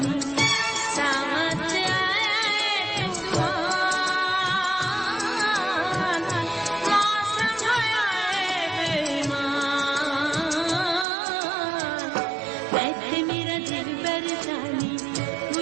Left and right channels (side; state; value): left; drops out; at 11.1 s